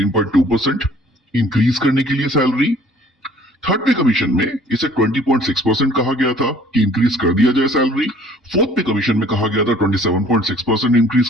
इंक्रीज करने के लिए सैलरी। थर्ड पे कमीशन में इसे 20.6% कहा गया था कि इंक्रीज कर दिया जाए सैलरी। फोर्थ पे कमीशन में कहा गया था 27.6% इंक्रीज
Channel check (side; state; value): both; normal; correlation 0.54